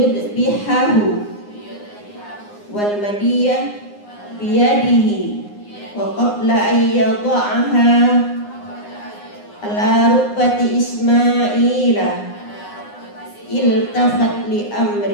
wal madiyah biyadihi wa qabla an yada'aha ala rukbati Ismaila iltafat li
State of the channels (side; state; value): right; late; 9.7 ms